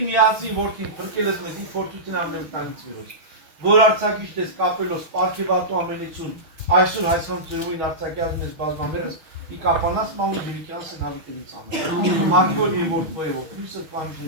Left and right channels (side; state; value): left; late; 6.3 ms